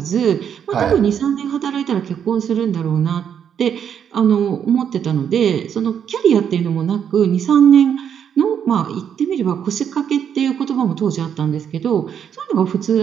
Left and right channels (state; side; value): quieter; left; 8.3 dB